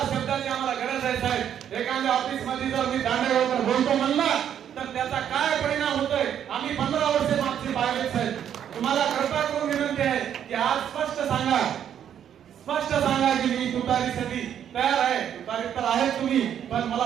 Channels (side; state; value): left; quieter; 9.4 dB